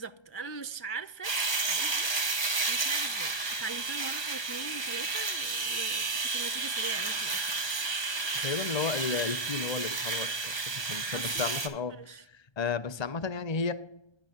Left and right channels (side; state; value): right; late; 1.2 ms